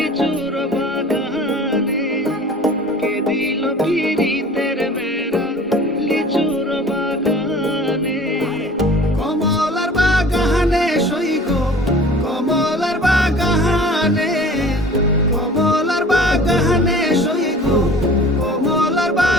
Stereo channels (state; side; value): normal; both; correlation 0.45